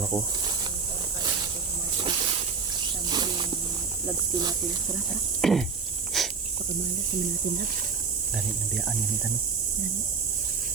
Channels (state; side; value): quieter; left; 5.4 dB